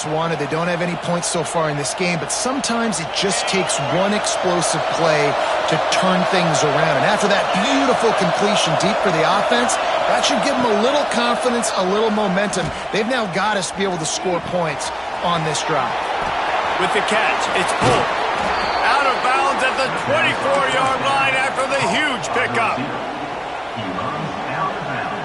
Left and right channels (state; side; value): identical; both; correlation 1.00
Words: wanted. They don't have any points so far in this game, but sometimes it just takes one explosive play to turn things around. And after that beautiful completion deep for the offense, that should give them a little confidence, a little momentum. They've now got us to be able to score points on this drive. With the catch, it's pulled. Out of bounds at the 24-yard line after the huge pickup. He runs out of